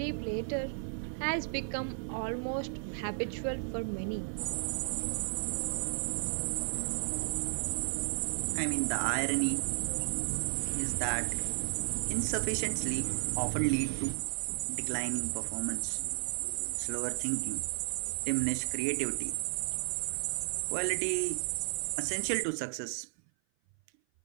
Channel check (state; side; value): silent; left; 55 dB below the other